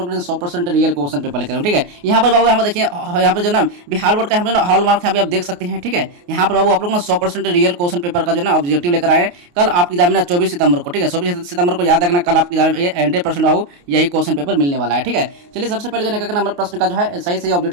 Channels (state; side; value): late; left; 28 ms